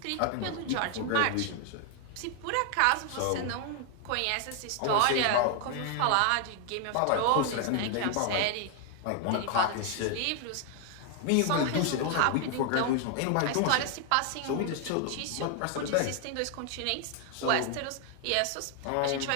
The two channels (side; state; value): both; different; correlation 0.00